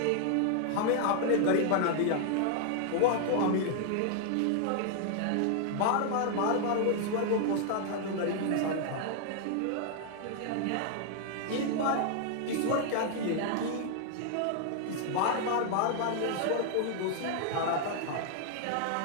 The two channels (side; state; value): both; different; correlation 0.00